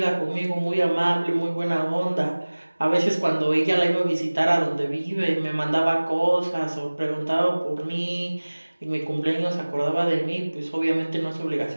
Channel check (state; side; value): inverted; both; correlation -1.00